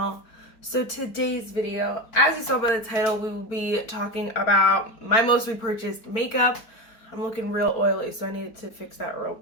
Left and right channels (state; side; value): late; right; 4.4 ms